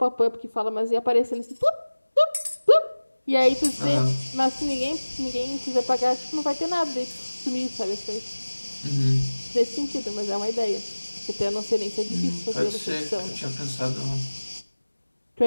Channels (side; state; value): both; inverted; correlation -1.00